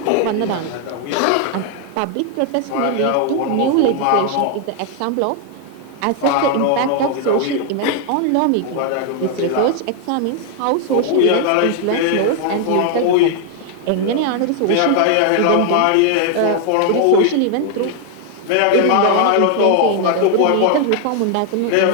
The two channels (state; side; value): different; both; correlation 0.00